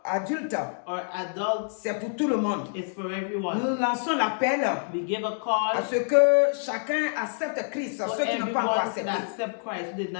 adultes, or adults. c'est pour tout le monde. It's for everyone. Nous lançons l'appel We give a à call ce que chacun accepte Christ, for ceux qui n'ont pas encore everyone to accepté, accept Christ who did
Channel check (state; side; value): silent; right; digital silence